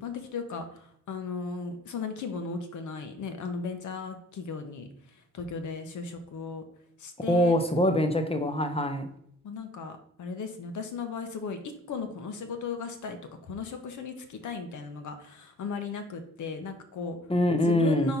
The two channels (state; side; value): normal; both; correlation 0.52